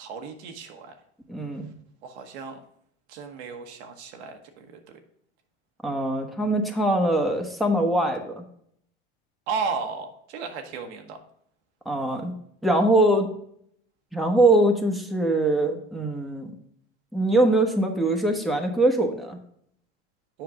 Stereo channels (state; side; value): normal; both; correlation 0.57